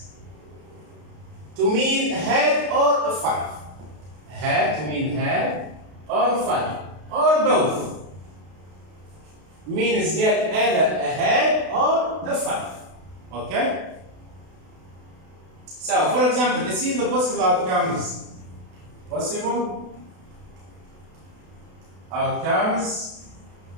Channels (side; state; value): left; late; 32 ms